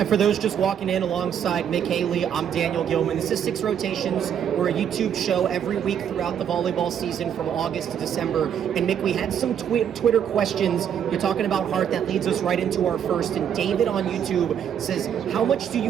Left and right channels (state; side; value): quieter; left; 8.8 dB